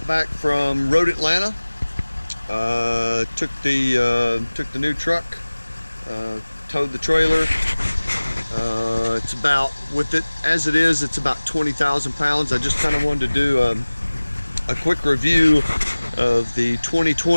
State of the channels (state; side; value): inverted; both; correlation -1.00